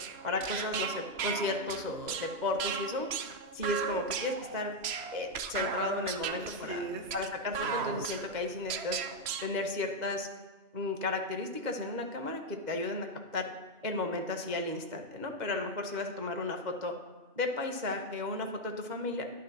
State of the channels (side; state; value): left; late; 3.0 ms